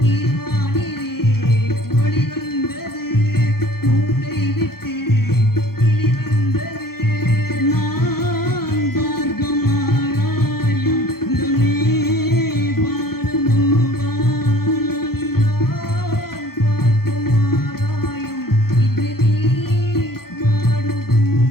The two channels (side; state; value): right; late; 0.94 ms